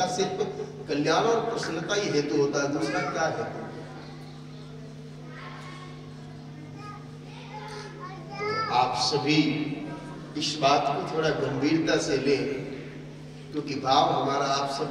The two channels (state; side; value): identical; both; correlation 1.00